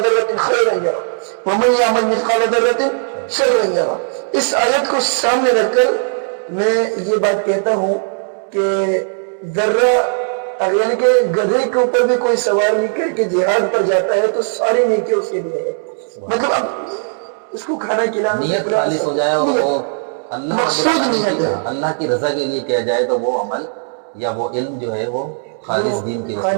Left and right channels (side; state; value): left; silent; digital silence